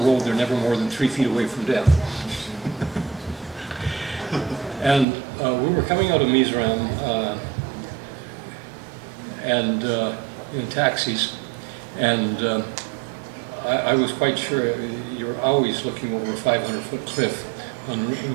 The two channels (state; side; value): drops out; left; at 5.1 s